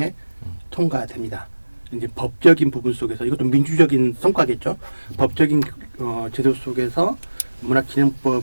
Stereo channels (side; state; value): both; inverted; correlation -1.00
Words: 통과됩니다. 이제 법적인 부분 속에서 이것도 민주적인 성과겠죠. 법적인 제도 속에서